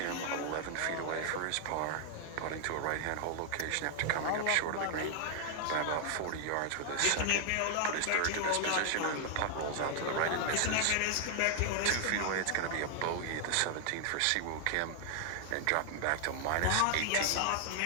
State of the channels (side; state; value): both; different; correlation 0.00